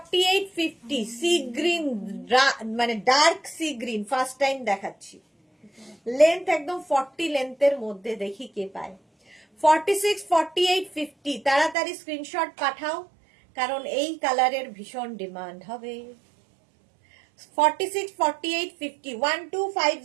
50 সি গ্রিন, মানে dark sea green, first time দেখাচ্ছি। লেন্থ একদম 40 লেন্থের মধ্যে, দেখি কে পায়। 46 48 50 তাড়াতাড়ি স্ক্রিনশট পাঠাও, কারণ এই কালারের ভীষণ ডিমান্ড হবে। 46 48 50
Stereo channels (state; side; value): drops out; left; at 11.8 s